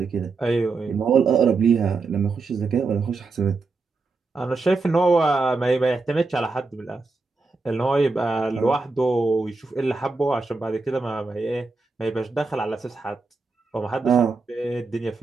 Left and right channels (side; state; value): left; quieter; 3.9 dB